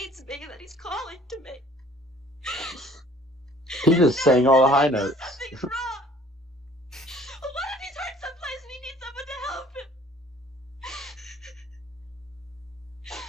me, that he's calling to me. He just sang all the high notes. What if he's hurt someplace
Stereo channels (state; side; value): normal; both; correlation 0.54